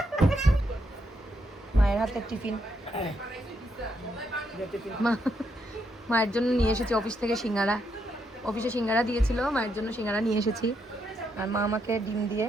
মায়ের হাতের টিফিন। মায়ের জন্য নিয়ে এসেছি অফিস থেকে সিঙ্গারা। অফিসে সিঙ্গারা দিয়েছিল, মায়ের জন্য সিঙ্গারা নিয়ে এসেছি। আর মা আমাকে ডিম দিয়ে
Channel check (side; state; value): both; normal; correlation 0.78